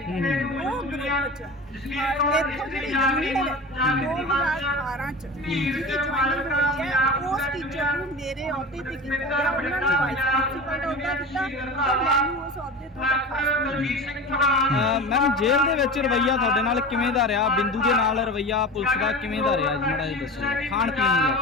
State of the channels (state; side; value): normal; both; correlation 0.31